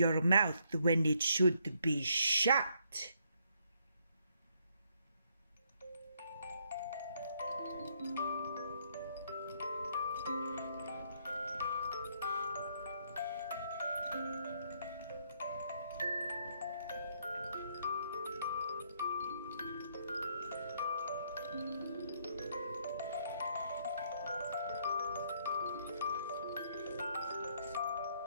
mouth when it should be shut."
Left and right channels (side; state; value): both; inverted; correlation -0.71